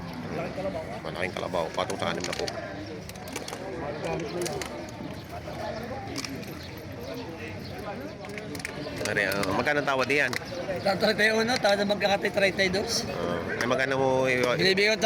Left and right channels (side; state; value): both; identical; correlation 1.00